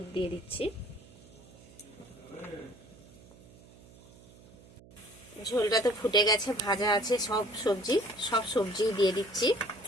দিয়ে দিচ্ছি। ঝোলটা তো ফুটে গেছে, ভাজা আছে সব সবজি দিয়ে দিচ্ছি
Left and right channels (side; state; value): right; noise; hum, 23 dB below the sound